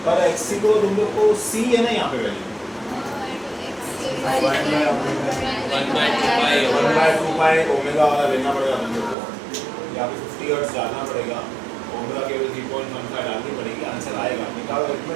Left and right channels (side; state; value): left; drops out; at 9.2 s